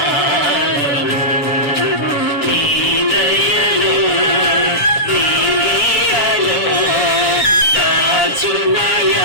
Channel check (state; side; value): late; right; 6.7 ms